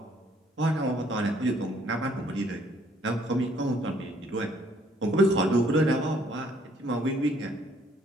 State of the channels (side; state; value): both; normal; correlation 0.64